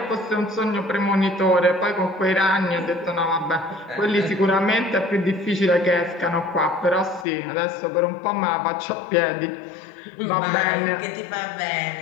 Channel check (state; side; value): drops out; right; at 7.2 s